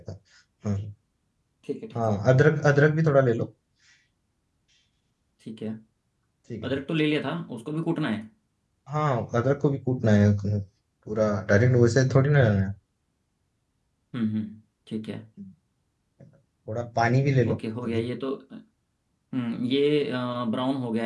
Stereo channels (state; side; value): identical; both; correlation 1.00